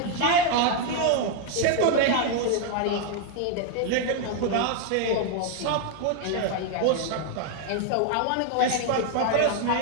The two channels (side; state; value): both; different; correlation 0.01